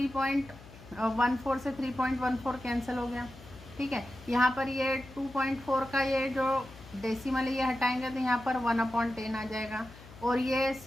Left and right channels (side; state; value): left; noise; hum, 19 dB below the sound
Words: से 3.14 कैंसिल हो गया, ठीक है। यहाँ पर ये 2.4 का ये जो डेसिमल है ये हटाएंगे तो यहाँ पर 1/10 आ जाएगा और ये